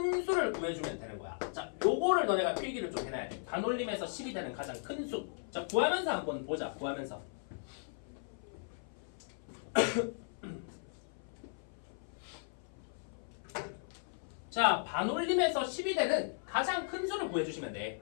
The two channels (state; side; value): silent; right; 53 dB below the other